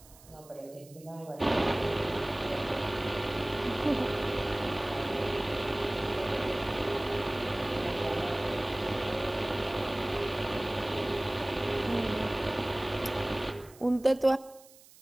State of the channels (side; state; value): right; noise; hiss, 23 dB below the sound